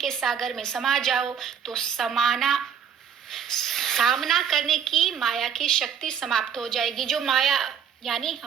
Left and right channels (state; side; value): quieter; left; 7.8 dB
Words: सागर में समा जाओ, तो सामना करने की माया की शक्ति समाप्त हो जाएगी। जो माया यानी